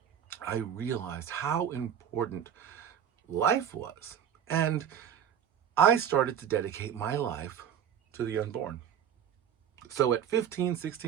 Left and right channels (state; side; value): quieter; left; 9.0 dB